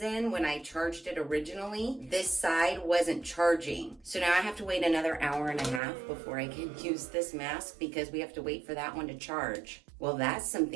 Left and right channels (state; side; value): drops out; left; at 5.8 s